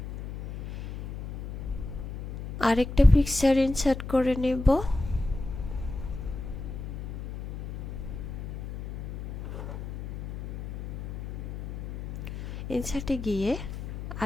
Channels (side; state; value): left; noise; hum, 7 dB below the sound